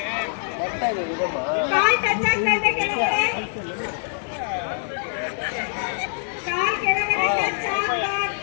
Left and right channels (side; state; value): right; silent; digital silence